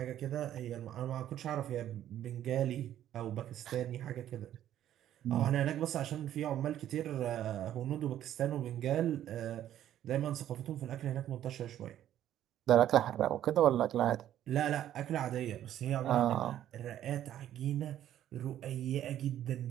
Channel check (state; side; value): quieter; left; 11.6 dB